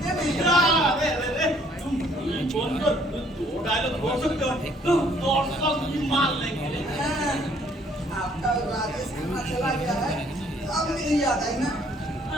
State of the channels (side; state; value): both; normal; correlation 0.62